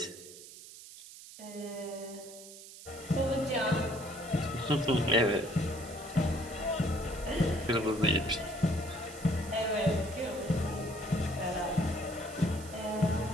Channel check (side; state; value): right; noise; hiss, 16 dB below the sound